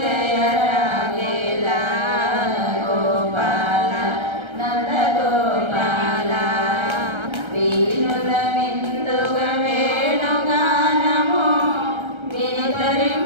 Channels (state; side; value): late; left; 1.3 ms